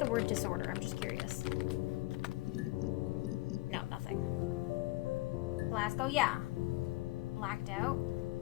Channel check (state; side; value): quieter; right; 19.6 dB